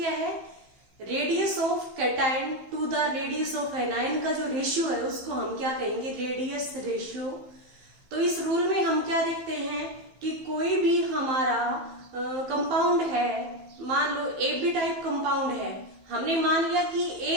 है? Radius of cation to the radius of anion का जो ratio है उसको हम क्या कहेंगे? Radius ratio. तो इस रूल में हम क्या देखते हैं कि कोई भी हमारा कंपाउंड है, मान लो ए बी टाइप कंपाउंड है, हमने मान लिया कि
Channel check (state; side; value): late; left; 15 ms